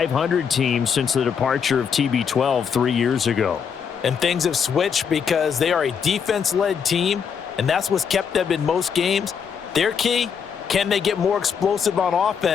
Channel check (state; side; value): quieter; right; 6.9 dB